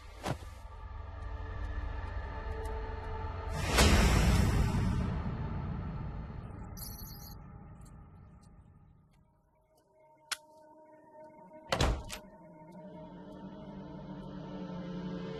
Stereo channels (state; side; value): identical; both; correlation 1.00